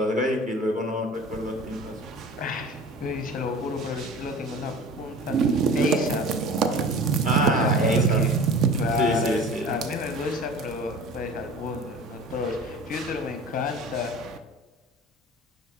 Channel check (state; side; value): normal; both; correlation 0.40